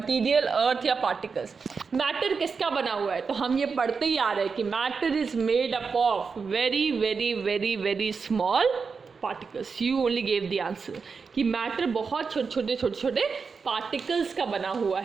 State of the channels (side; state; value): left; quieter; 5.2 dB